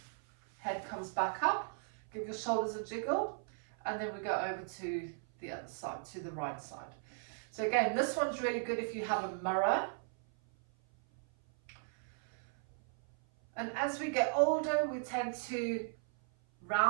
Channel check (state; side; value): silent; left; 53 dB below the other